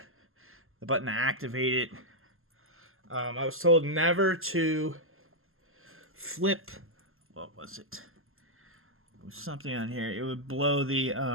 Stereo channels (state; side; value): late; left; 0.61 ms